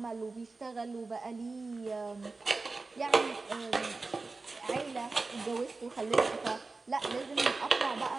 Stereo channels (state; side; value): quieter; left; 3.7 dB